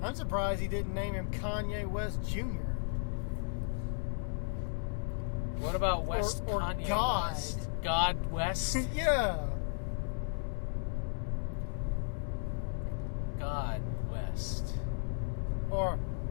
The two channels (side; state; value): right; silent; 55 dB below the other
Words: I'm surprised he didn't name him Kanye West Jr. What about West or Kanye God? West? God West? Yeah. God West. Or